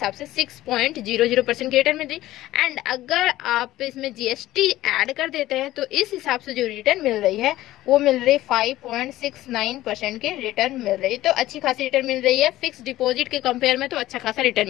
से 6.00% की रिटर्न मिल रही है। एंड अगर आप इसमें जीएसटी ऐड कर देते हैं तो इस हिसाब से जो रिटर्न मिल रही है वो मिल रही 5.69% की रिटर्न मिल रही है। तो अच्छी खासी रिटर्न मिल रही है, फिक्स डिपॉजिट के कंपेयर में तो अच्छा खासा रिटर्न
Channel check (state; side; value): quieter; right; 15.6 dB